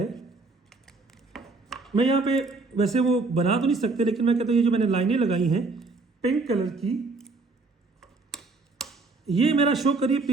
मैं यहाँ पे वैसे वो बना तो नहीं सकते, लेकिन मैं कहता हूँ ये जो मैंने लाइनें लगाई हैं पिंक कलर की, ये मेरा शो करिए P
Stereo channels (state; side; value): quieter; left; 3.7 dB